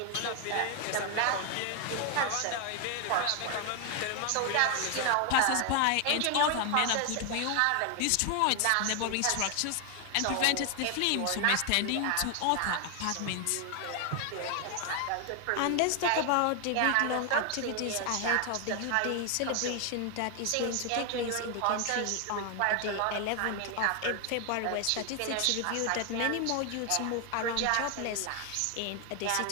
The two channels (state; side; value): different; both; correlation 0.00